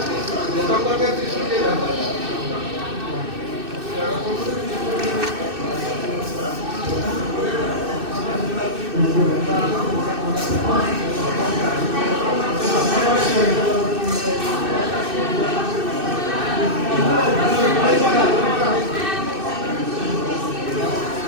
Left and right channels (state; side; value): late; left; 2.6 ms